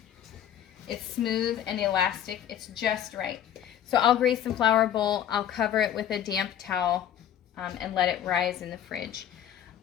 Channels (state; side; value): quieter; right; 10.3 dB